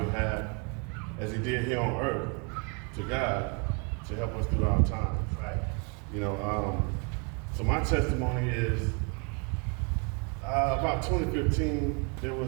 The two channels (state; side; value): quieter; left; 34.5 dB